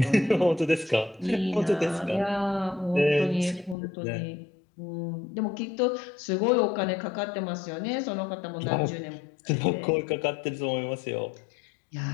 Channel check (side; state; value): right; drops out; at 3.8 s